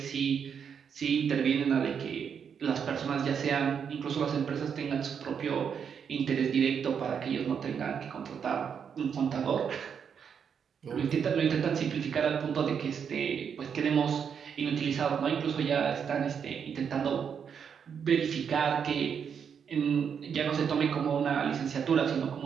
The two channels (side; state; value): left; quieter; 7.2 dB